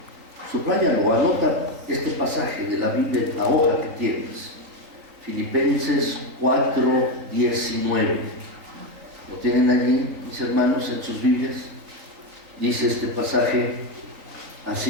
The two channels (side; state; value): left; late; 3.9 ms